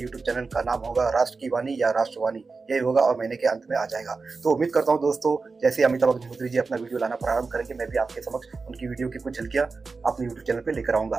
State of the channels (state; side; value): quieter; left; 4.3 dB